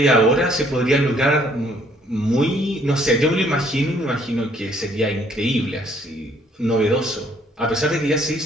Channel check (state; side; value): normal; both; correlation 0.63